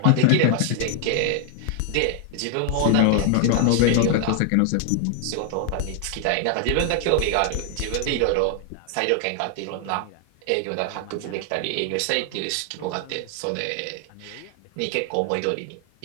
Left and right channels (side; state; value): both; different; correlation 0.00